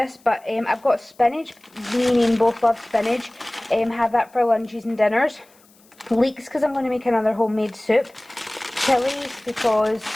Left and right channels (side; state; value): left; noise; hiss, 30 dB below the sound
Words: but I've got spinach, me and Ian both love spinach, have that for lunches and dinners. Leeks because I'm going to make another homemade soup. Chilies because